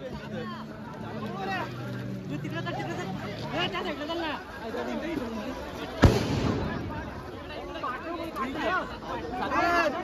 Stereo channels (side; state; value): both; identical; correlation 1.00